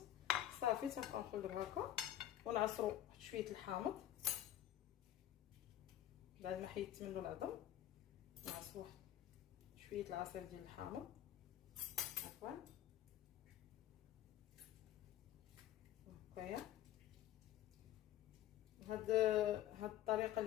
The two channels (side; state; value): right; quieter; 12.2 dB